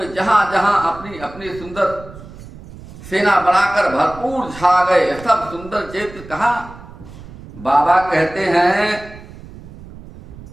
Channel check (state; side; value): noise; right; rumble, 17 dB below the sound